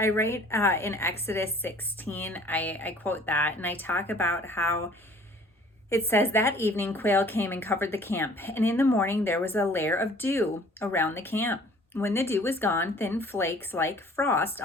write in Exodus 16, I quote that, and I talk about how it says, that evening quail came and covered the camp, and in the morning there was a layer of dew around the camp. When the dew was gone, thin flakes like frost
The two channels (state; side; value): normal; both; correlation 0.52